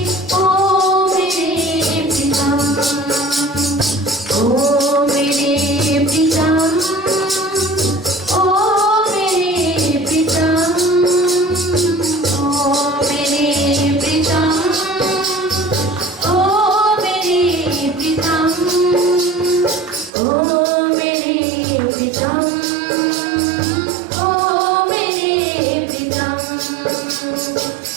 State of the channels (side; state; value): left; drops out; at 20.1 s